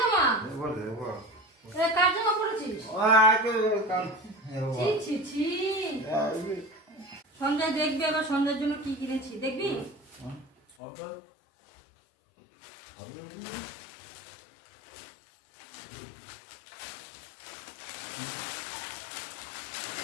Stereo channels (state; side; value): drops out; right; at 10.8 s